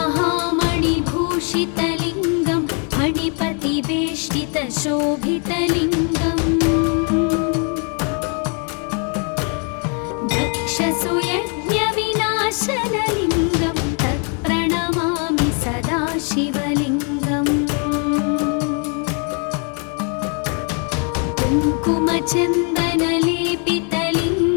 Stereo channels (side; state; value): right; quieter; 39.6 dB